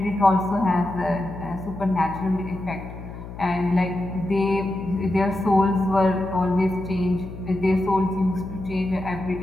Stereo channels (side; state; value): left; noise; hum, 12 dB below the sound